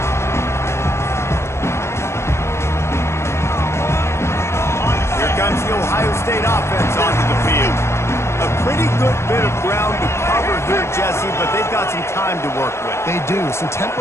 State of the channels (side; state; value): right; late; 0.13 ms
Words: Here comes the Ohio State offense onto the field. A pretty good bit of ground to cover here, Jesse, but they've got some time to work with. They do. So